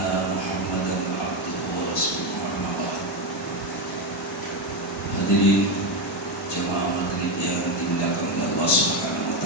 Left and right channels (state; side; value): normal; both; correlation 0.10